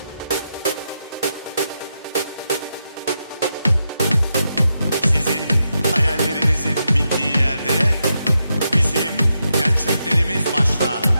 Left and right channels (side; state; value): both; inverted; correlation -0.85